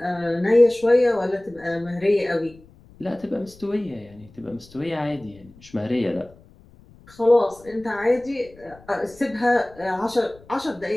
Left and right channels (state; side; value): noise; left; rumble, 25 dB below the sound